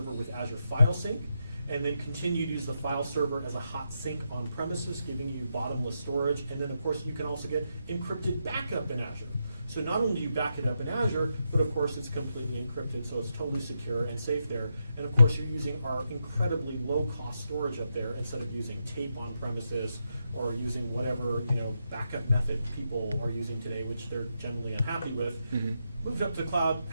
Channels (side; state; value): both; inverted; correlation -0.83